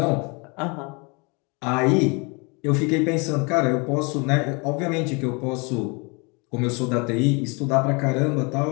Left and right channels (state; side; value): quieter; right; 30.5 dB